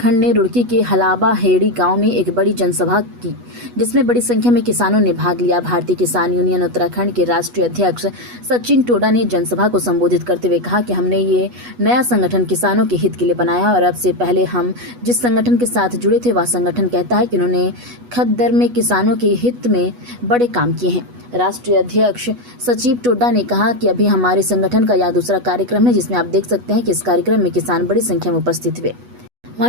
ने रुड़की के हलाबा हेड़ी गांव में एक बड़ी जनसभा की, जिसमें बड़ी संख्या में किसानों ने भाग लिया। भारतीय किसान यूनियन उत्तराखंड के राष्ट्रीय अध्यक्ष सचिन टोडा ने जनसभा को संबोधित करते हुए कहा कि हमने ये नया संगठन किसानों के हित के लिए बनाया और अब से पहले हम जिस संगठन के साथ जुड़े थे वह संगठन कहता है कि उन्होंने खद्दर में किसानों के हित में बड़े काम किए हैं। राष्ट्रीय अध्यक्ष सचिव टोडा ने कहा कि अभी हमारे संगठन का यह दूसरा कार्यक्रम है, जिसमें आप देख सकते हैं कि इस कार्यक्रम में किसान बड़ी संख्या में उपस्थित हुए।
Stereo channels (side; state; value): left; late; 8.2 ms